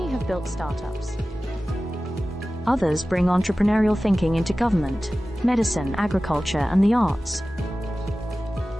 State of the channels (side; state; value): both; normal; correlation 0.96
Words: have built startups. Others bring entrepreneurial thinking into government, medicine, agriculture, and the arts.